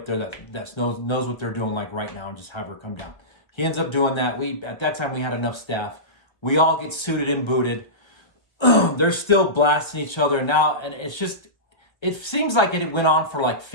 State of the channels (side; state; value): right; late; 1.3 ms